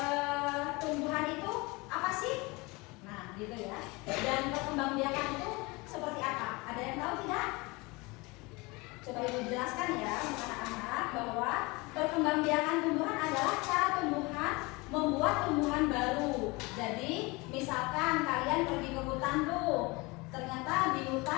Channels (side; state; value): right; quieter; 25.1 dB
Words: tumbuhan itu apa sih? Nah, gitu ya. Dan perkembangbiakan itu seperti apa? Ada yang tahu tidak? Coba Ibu jelaskan ya, anak-anak, bahwa perkembangbiakan tumbuhan adalah cara tumbuhan membuat tumbuhan baru. Jadi misalkan kalian pergi ke hutan tuh, ternyata di